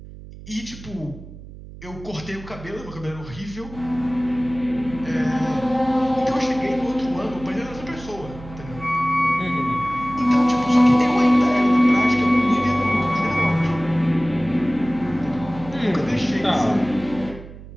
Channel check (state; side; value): noise; right; hum, 16 dB below the sound